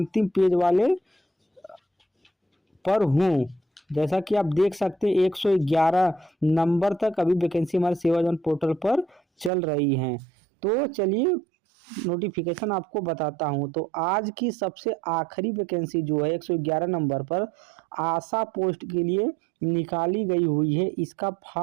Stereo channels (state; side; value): drops out; left; at 9.5 s